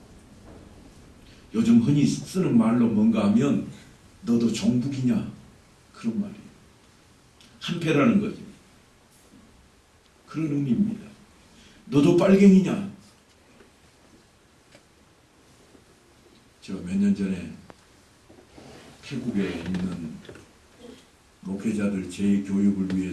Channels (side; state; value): both; identical; correlation 1.00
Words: 요즘 흔히 쓰는 말로 뭔가 하면 너도 종북이냐? 그런 말이에요. 한패라는 거죠. 그런 의미입니다. 너도 빨갱이냐? 제가 몇 년 전에 태국에 있는 목회자들 재교육을